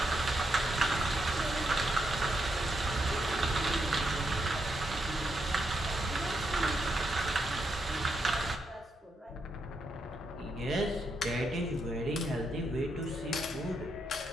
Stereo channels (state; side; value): normal; both; correlation 0.81